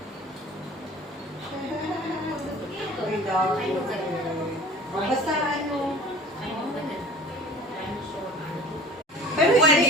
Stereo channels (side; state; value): both; normal; correlation 0.44